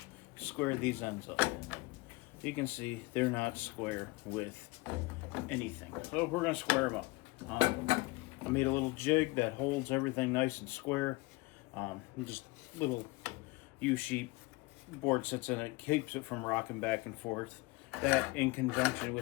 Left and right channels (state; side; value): quieter; right; 23.2 dB